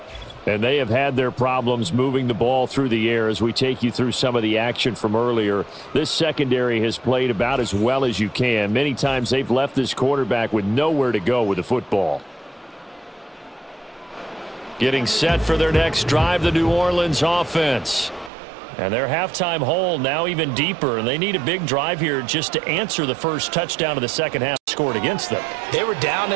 And they have had their problems moving the ball through the air as we take you through some of the action from earlier. This secondary has played about as well as you can. Many times they've left this quarterback with nowhere to go with the football. Getting set for their next drive, the New Orleans offense. And their halftime hole now even deeper, and they need a big drive here just to answer the first touchdown of the second half scored against them. They were down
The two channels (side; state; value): left; drops out; at 18.3 s